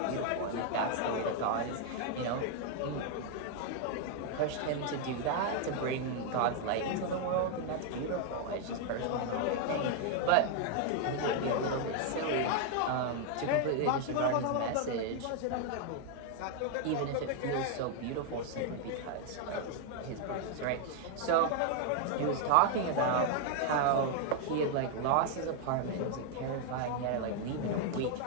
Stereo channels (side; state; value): both; different; correlation 0.00